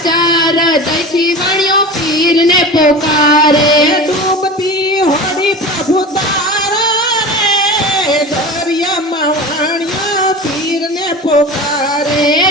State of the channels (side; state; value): both; normal; correlation 0.32